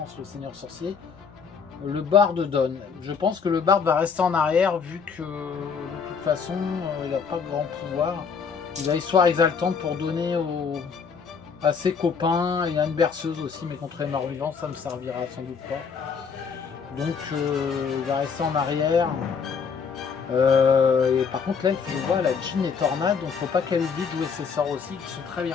le seigneur sorcier, le barde donne. Je pense que le barde va rester en arrière vu que de toute façon il n'a pas de grand pouvoir. Il a histoire exaltante pour donner à ses copains. Il a une berceuse aussi, mais contre les morts vivants ça ne servira sans doute pas. Donc il va rester en arrière. Et par contre là je vois la Jean et Tornade, donc faut pas qu'elle oublie de jouer ses sorts aussi qui sont très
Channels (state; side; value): quieter; right; 6.0 dB